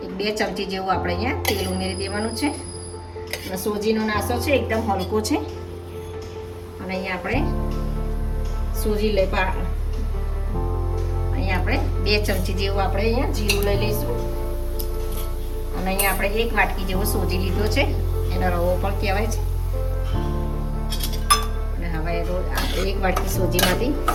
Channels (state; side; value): identical; both; correlation 1.00